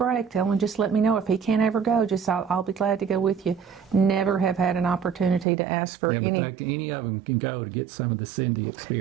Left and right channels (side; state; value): left; drops out; at 5.5 s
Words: tell him, just let me know. If he can't ever go, just I'll be glad to go with you. Never have had an opportunity to ask for any. But any of them can go to get some of the Cindy